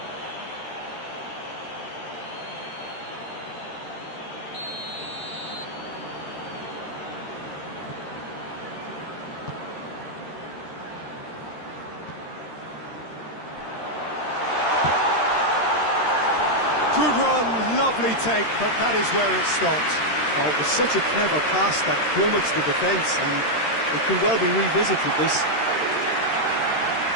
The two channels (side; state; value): right; late; 13 ms